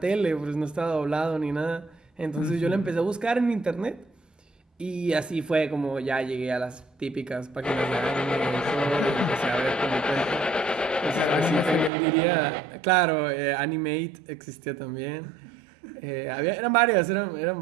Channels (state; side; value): drops out; left; at 11.9 s